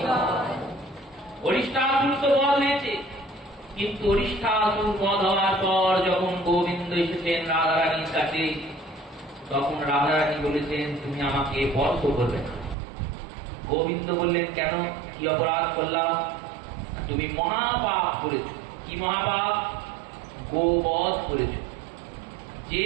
অরিষ্টাসুর তো বধ হয়েছে, কিন্তু অরিষ্টাসুর বধ হওয়ার পর যখন গোবিন্দ এসেছেন রাধারানীর কাছে, তখন রাধারানী বলেছেন তুমি আমাকে বধ করবে না। গোবিন্দ বললেন কেন, কি অপরাধ করলাম? তুমি মহাপাপ করেছ। কি মহাপাপ? গোবধ করেছ।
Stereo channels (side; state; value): left; drops out; at 12.8 s